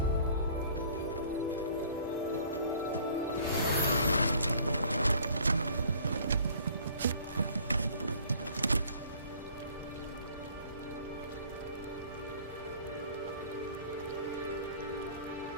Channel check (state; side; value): inverted; both; correlation -0.53